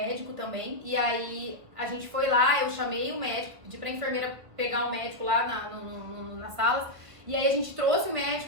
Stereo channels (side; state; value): left; late; 1.5 ms